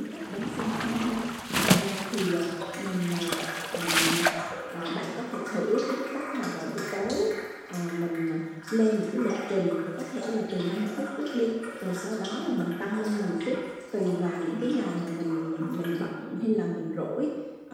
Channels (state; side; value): identical; both; correlation 1.00